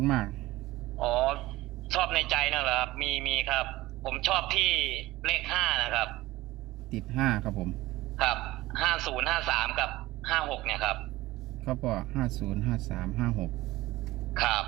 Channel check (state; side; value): quieter; left; 18.1 dB